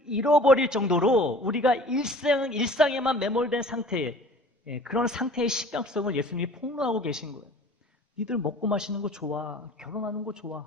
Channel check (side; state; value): both; normal; correlation 0.46